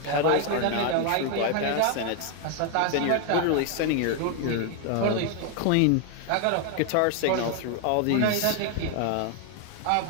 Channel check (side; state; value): both; different; correlation 0.01